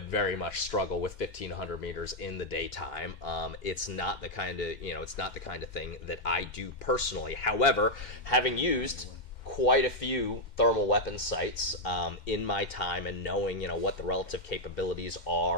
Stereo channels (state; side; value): late; right; 2.1 ms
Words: very much struggle with 1,500 meters in the daytime. It's not the kind of thing that I do personally. However, having used quite a few thermal weapon sights in my time, and knowing what the relative capabilities